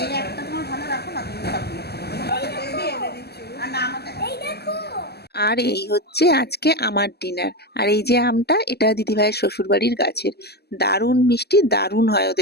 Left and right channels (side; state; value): right; late; 0.47 ms